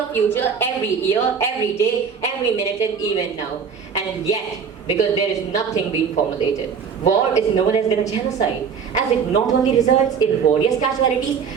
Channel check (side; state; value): left; quieter; 6.4 dB